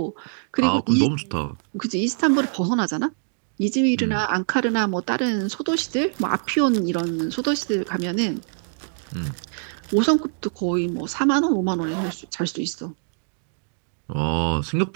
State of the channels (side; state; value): left; silent; 61 dB below the other